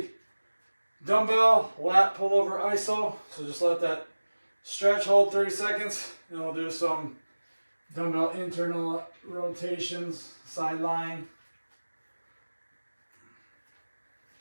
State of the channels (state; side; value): inverted; both; correlation -1.00